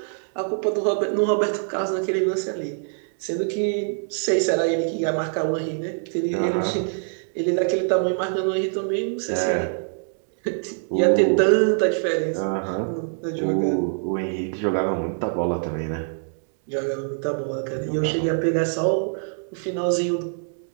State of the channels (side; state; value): left; silent; digital silence